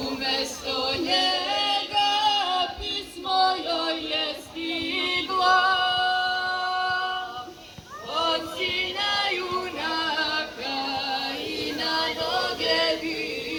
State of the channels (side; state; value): both; identical; correlation 1.00